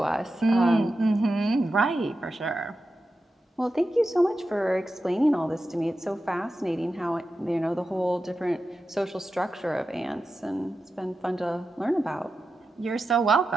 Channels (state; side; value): normal; both; correlation 0.91